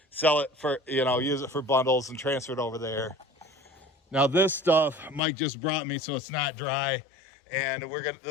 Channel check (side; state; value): right; drops out; at 5.2 s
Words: sell it for, use it for bundles and transfer it over there. Now this stuff Mike just brought me, so it's not dry. And